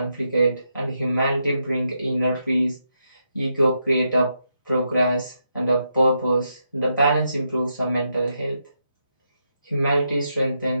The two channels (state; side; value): inverted; both; correlation -0.83